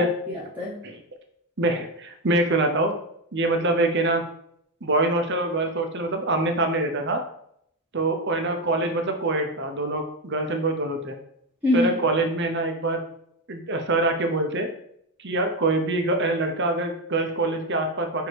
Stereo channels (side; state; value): both; normal; correlation 0.11